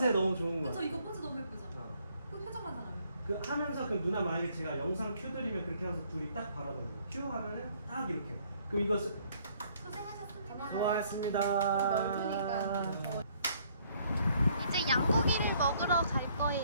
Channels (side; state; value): both; inverted; correlation -0.65